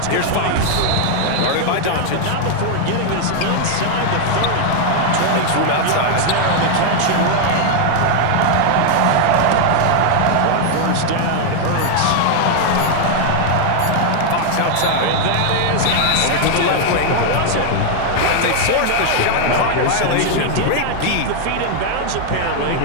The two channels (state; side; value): different; both; correlation 0.00